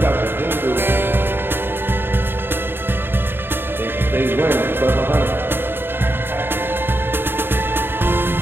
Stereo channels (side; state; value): left; late; 0.10 ms